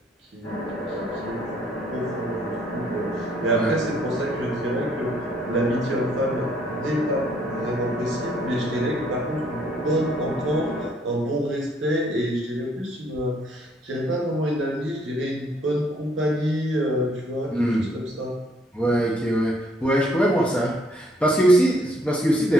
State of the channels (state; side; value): normal; both; correlation 0.66